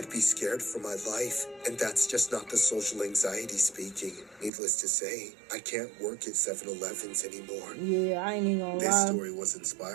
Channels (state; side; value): drops out; left; at 4.5 s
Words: be scared for my life. And that's just not the social anxiety speaking. Needless to say, I can't work at 7-Elevens anymore. Yeah, I ain't even gonna This lie. story was